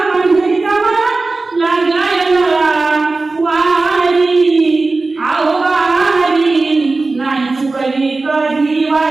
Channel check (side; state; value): left; quieter; 3.5 dB